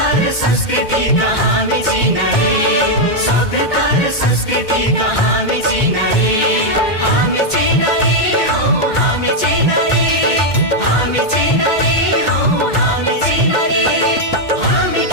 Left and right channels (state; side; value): late; right; 2.1 ms